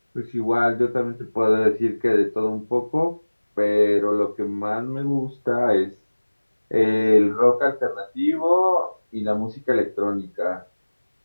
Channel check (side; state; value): both; inverted; correlation -1.00